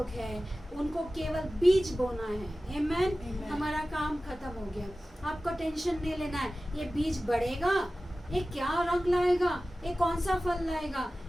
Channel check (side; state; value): both; normal; correlation 0.96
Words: हैं उनको केवल बीज बोना है। आमेन। हमारा काम खत्म हो गया। आपको टेंशन नहीं लेना है ये बीज बढ़ेगा, ये क्या रंग लाएगा, ये कौन सा फल लाएगा,